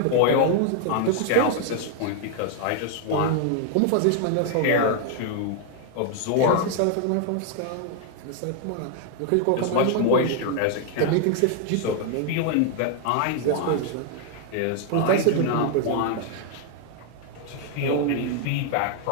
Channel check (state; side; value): different; both; correlation 0.00